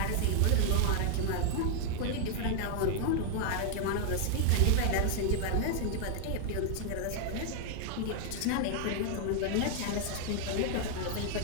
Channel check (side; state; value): both; different; correlation 0.00